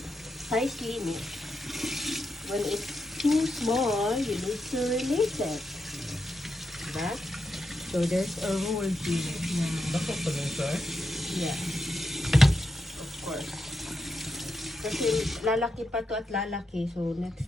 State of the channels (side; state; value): both; normal; correlation 0.85